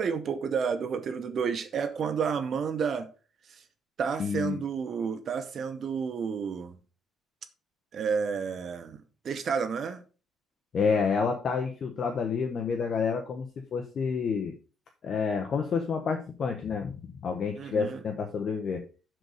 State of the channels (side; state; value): both; normal; correlation 0.70